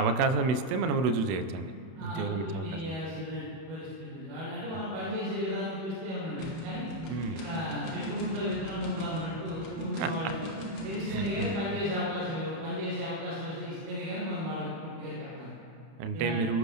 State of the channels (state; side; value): late; left; 31 ms